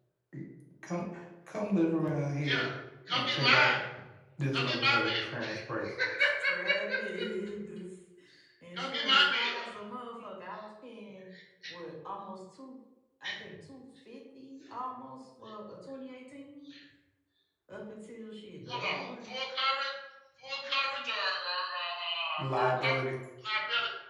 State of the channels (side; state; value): both; identical; correlation 1.00